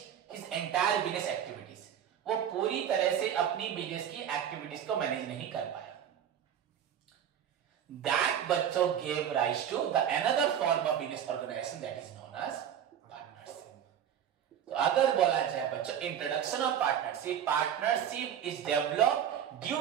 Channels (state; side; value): quieter; left; 9.3 dB